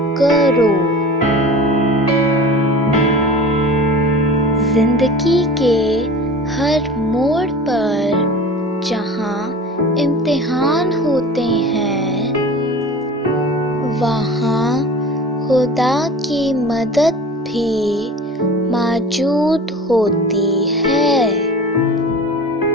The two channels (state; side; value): normal; both; correlation 0.38